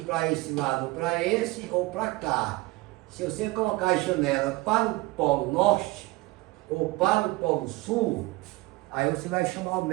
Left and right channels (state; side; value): quieter; left; 21.0 dB